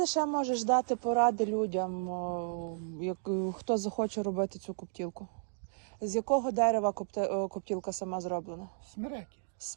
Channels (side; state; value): left; silent; digital silence